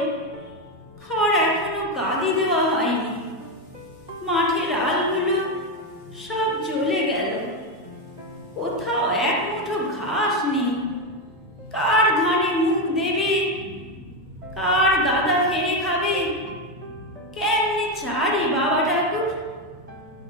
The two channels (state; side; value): normal; both; correlation 0.09